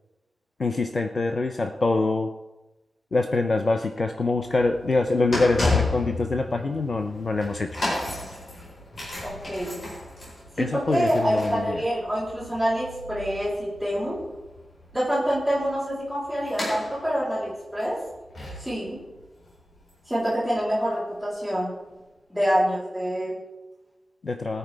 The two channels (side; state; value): both; normal; correlation 0.92